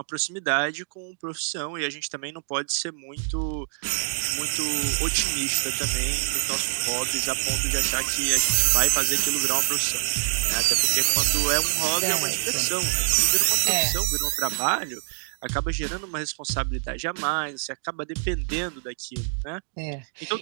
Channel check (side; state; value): left; silent; digital silence